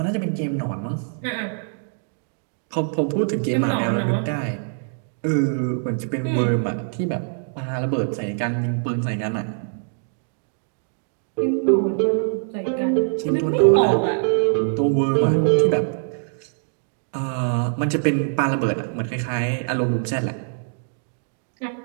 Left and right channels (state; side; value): silent; left; digital silence